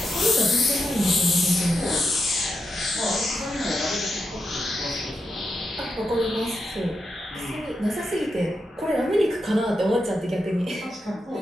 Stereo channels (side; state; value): both; normal; correlation 0.85